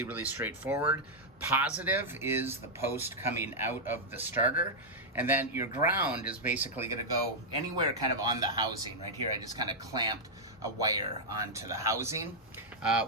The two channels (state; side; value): normal; both; correlation -0.04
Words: straightforward. Positive is the post coming out of the starter, and then your ground is basically gonna go anywhere kind of on the housing. Right here, I just kind of clamped a wire onto the housing.